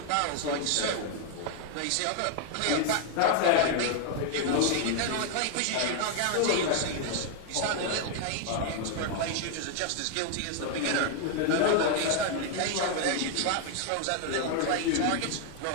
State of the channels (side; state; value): both; different; correlation 0.01